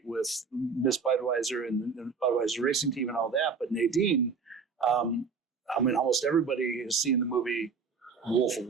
with Miss Budweiser and the Budweiser racing team and all that. But Nadine, almost everybody has seen the movie Wolf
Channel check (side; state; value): left; quieter; 5.3 dB